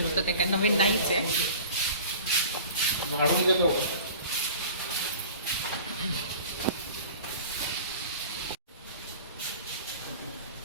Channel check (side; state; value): both; inverted; correlation -0.42